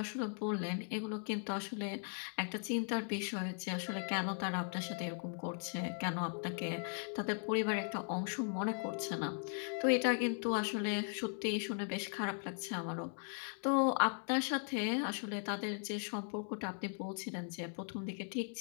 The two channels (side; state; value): right; silent; 52 dB below the other